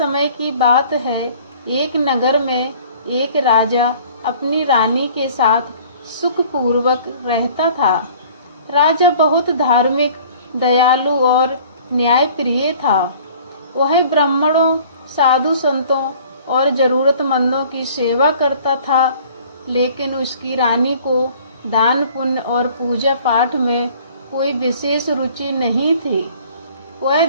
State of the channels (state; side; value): inverted; both; correlation -0.51